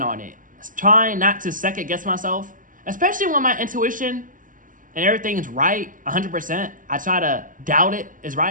on it. Trying not to second guess myself, especially when my intuition and everything's right 100%. I try to doubt it is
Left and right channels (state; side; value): late; left; 0.39 ms